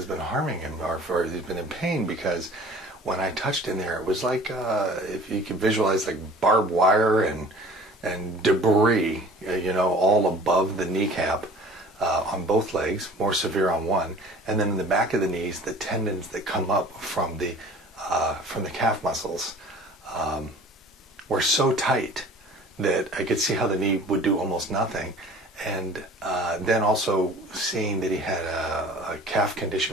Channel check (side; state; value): both; normal; correlation 0.46